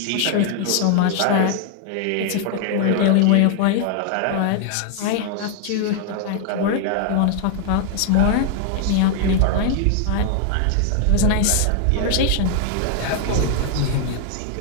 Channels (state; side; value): different; both; correlation 0.00